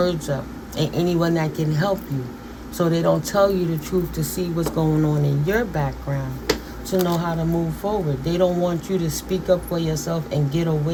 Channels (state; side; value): identical; both; correlation 1.00